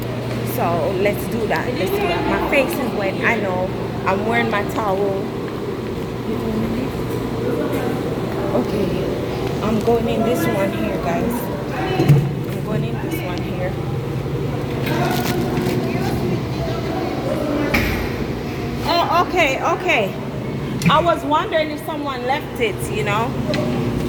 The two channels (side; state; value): both; identical; correlation 1.00